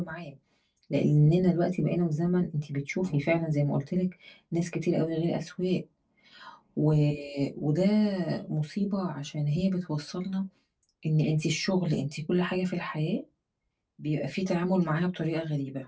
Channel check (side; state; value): both; identical; correlation 1.00